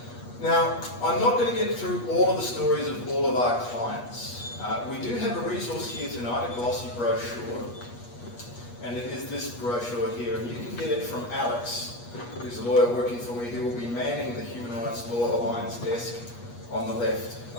Now, I'm not going to get through all of the stories of all of our clients. We do have a resource here tonight, a glossy brochure, and it is this brochure here, and you can get it from Alex, who's a lawyer working for me, who will be manning the Human Rights Law Alliance desk on the left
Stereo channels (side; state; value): right; late; 8.4 ms